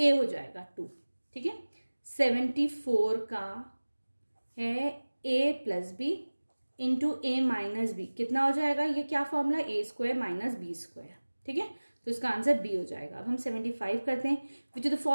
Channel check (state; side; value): inverted; both; correlation -1.00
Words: हो जाएगा 2, ठीक है। 74 का है a plus b into a minus b, कितना हो जाएगा, ये क्या formula, a square minus b square, ठीक है, तो इसका आंसर बी हो जाएगा। अब हम 75 करते हैं, which of the